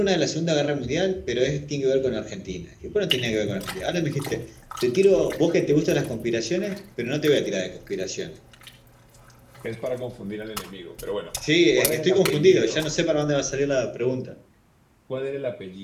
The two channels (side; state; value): both; identical; correlation 1.00